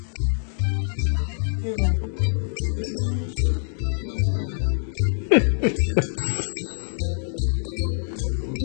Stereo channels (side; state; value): right; silent; digital silence